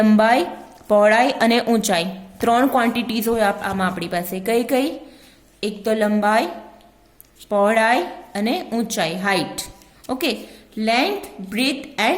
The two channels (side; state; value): both; identical; correlation 1.00